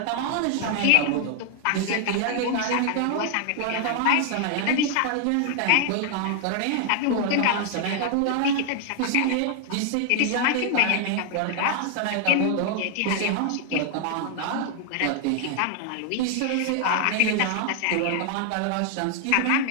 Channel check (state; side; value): different; both; correlation 0.00